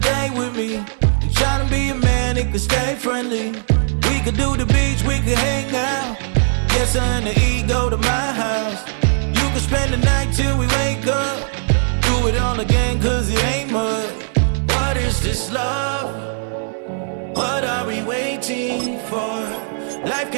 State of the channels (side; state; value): left; silent; digital silence